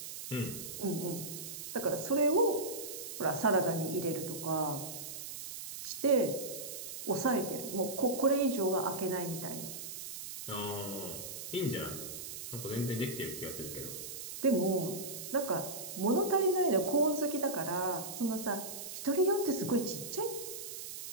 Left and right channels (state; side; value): noise; right; hiss, 8 dB below the sound